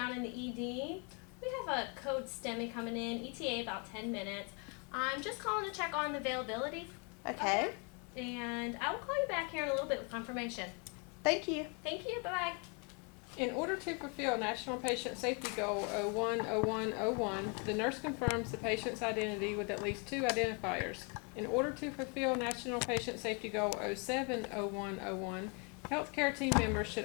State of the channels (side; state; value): right; quieter; 34.4 dB